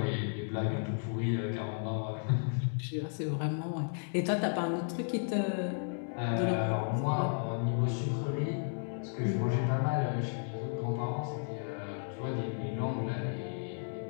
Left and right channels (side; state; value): right; silent; digital silence